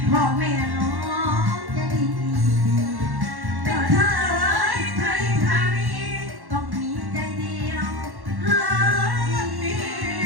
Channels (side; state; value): left; late; 1.1 ms